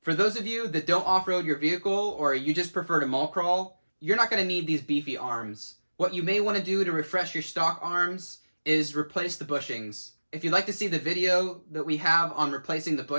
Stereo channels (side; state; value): both; inverted; correlation -1.00